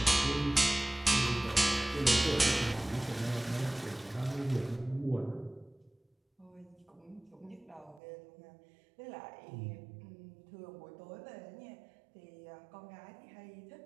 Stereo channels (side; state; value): left; drops out; at 8.0 s